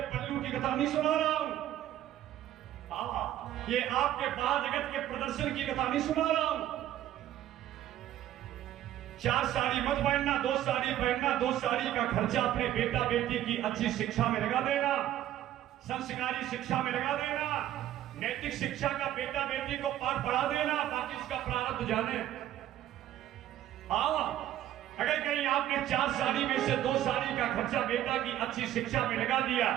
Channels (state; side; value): quieter; left; 12.6 dB